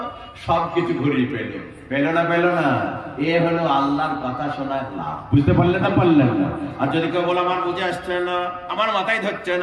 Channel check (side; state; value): both; identical; correlation 1.00